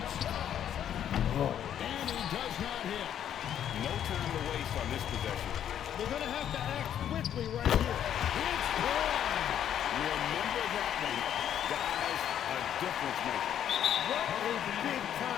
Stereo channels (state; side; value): quieter; right; 10.0 dB